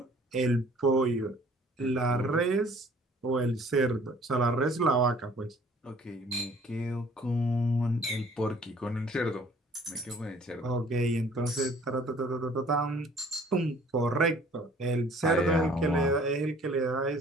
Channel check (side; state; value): both; normal; correlation 0.55